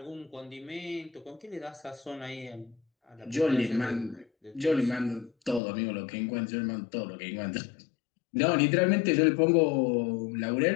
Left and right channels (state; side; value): drops out; right; at 5.6 s